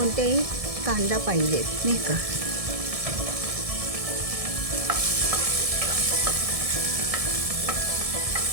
कांदा पाहिजेत नाही का.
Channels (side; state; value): left; late; 1.7 ms